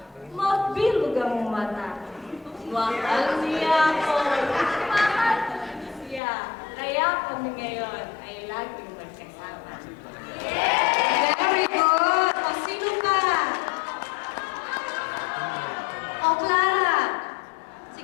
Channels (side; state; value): right; drops out; at 6.2 s